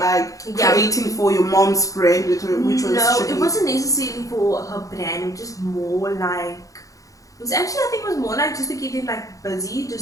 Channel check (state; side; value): late; right; 0.16 ms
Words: creating for your mom's brand, which was no, Chernice. it wasn't necessarily for her brand. Just more like it was actually, I think it was more like just to keep them like busy,